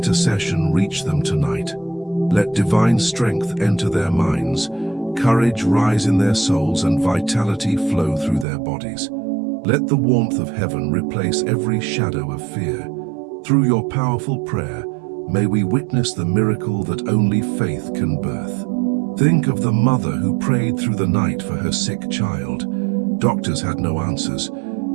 reach them tonight. Let divine strength enter their minds, courage rise in their souls, and vitality flow through their bodies. Let the warmth of heaven replace every shadow of fear. Through your powerful prayer, may we witness the miracle that only faith can birth. Think of the mother who prayed through the night for her sick child. Doctors had no answers,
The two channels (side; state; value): left; drops out; at 8.5 s